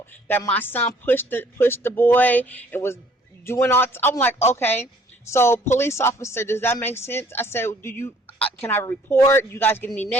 That my son pushed the boy and was doing all. I'm like, okay. So police officer, does that make sense? I said, can I report? You guys get any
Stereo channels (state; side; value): normal; both; correlation 0.59